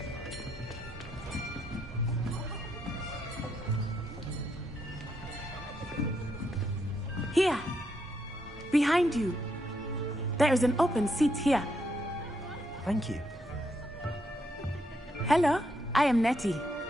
Here. Behind you. There is an open seat here. Thank you. Hello, I am Nettie.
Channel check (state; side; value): normal; both; correlation 0.78